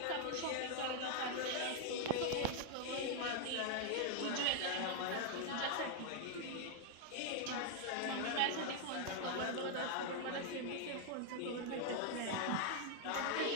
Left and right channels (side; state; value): both; different; correlation 0.00